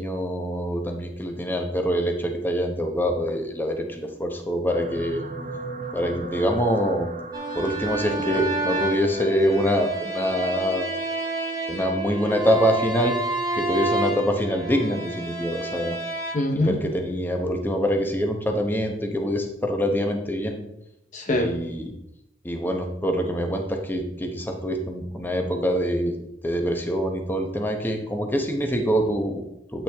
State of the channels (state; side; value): normal; both; correlation 0.63